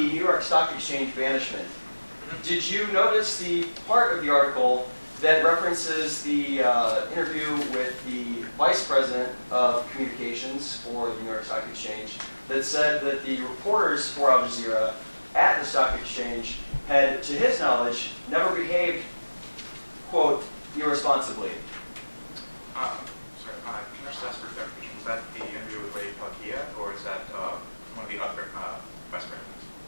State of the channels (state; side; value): inverted; both; correlation -1.00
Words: New York Stock Exchange banishment, did you notice the part of the article that references the interview with the Vice President of Communications for the New York Stock Exchange that said that the reporters for Al Jazeera at the Stock Exchange had, to his knowledge, never behaved, quote, irresponsibly? Sorry, can I just ask for clarification? Was that the interview with Ray Pakia, or is that one of the other vice